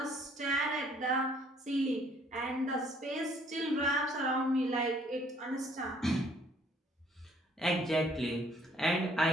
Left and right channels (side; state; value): both; normal; correlation 0.62